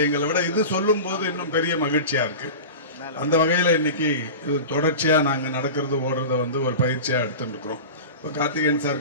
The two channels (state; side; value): inverted; both; correlation -0.30